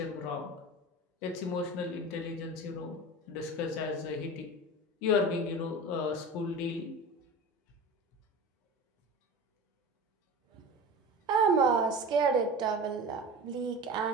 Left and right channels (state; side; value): normal; both; correlation 0.33